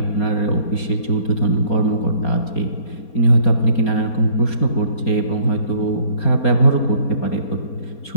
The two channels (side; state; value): right; late; 4.3 ms